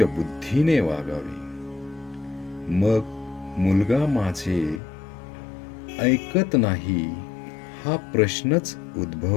बुद्धीने वागावे. मग मुलगा माझे ऐकत नाही हा प्रश्नच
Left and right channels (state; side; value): drops out; right; at 4.8 s